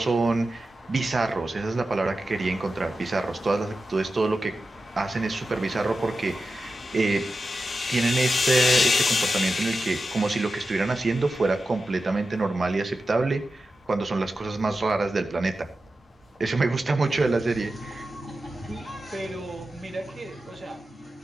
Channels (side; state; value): both; normal; correlation 0.91